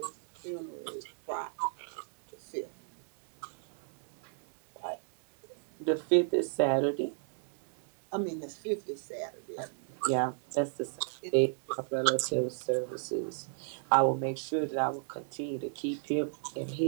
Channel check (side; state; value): left; silent; 55 dB below the other